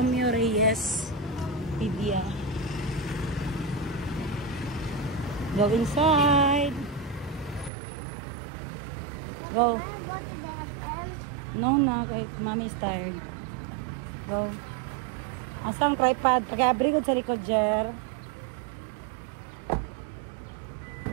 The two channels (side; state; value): left; drops out; at 7.7 s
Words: Reyes Pedia. Go inside. Go. No, na. Mommy is tired. Go. Asang tripod? Pag-abri ko sa likod, Jer.